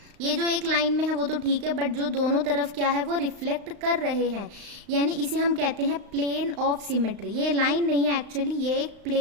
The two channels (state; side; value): late; left; 35 ms